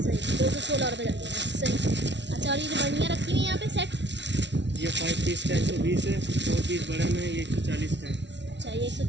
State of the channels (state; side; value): late; left; 0.51 ms